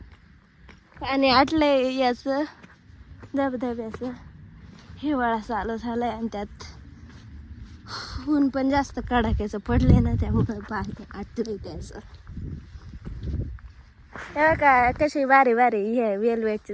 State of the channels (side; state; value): both; identical; correlation 1.00